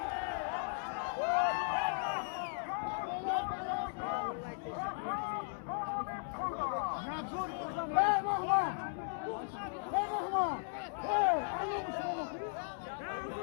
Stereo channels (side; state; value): right; silent; digital silence